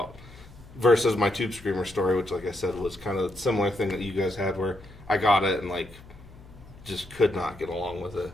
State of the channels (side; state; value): left; noise; hum, 20 dB below the sound